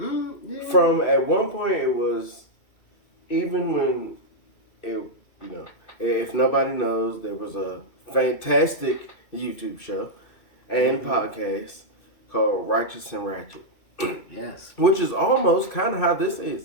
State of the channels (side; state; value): right; late; 2.6 ms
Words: at one point it was, even when it, if nobody knows, there was a fantastic YouTube show and podcast called Righteous and Ratchet. Yes. Which is almost kind of how this